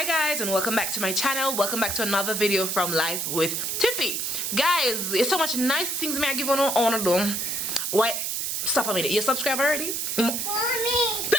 guys, and welcome back to my channel. Welcome back to another video from Life with Tiffy. Guys, it's so much nice things me I give on do. Why? Stop a minute. You subscribe already? Mommy.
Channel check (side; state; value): right; noise; hiss, 1 dB below the sound